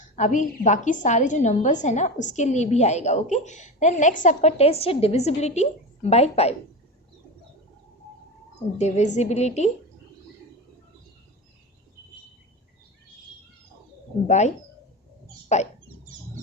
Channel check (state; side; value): normal; both; correlation 0.24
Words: अभी बाकी सारे जो नंबर्स हैं ना उसके लिए भी आएगा। ओके, देन नेक्स्ट आपका टेस्ट है डिविजिबिलिटी बाय 5। Divisibility bye 5।